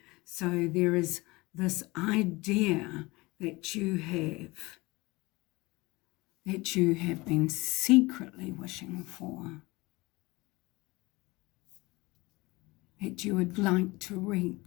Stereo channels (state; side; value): quieter; right; 22.7 dB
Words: So there is this idea that you have been secretly wishing for, that you would like to